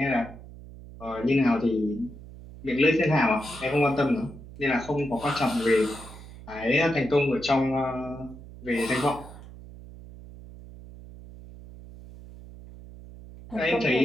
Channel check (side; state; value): right; noise; hum, 17 dB below the sound